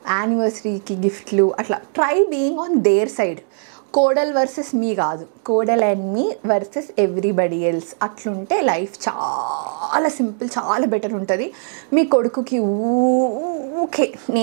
యానివర్సరీకి గిఫ్ట్లు, అట్లా try being on their side. కోడల్ వర్సెస్ మీ కాదు, కోడల్ అండ్ మీ వర్సెస్ ఎవ్రీబడి ఎల్స్. అట్లుంటే లైఫ్ చాలా సింపుల్, చాలా బెటర్ ఉంటుంది. మీ కొడుకుకి ఊకే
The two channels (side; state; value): left; silent; digital silence